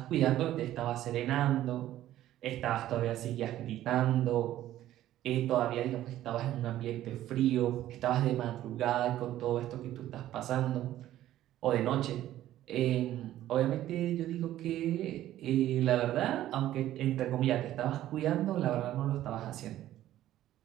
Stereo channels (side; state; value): left; quieter; 13.4 dB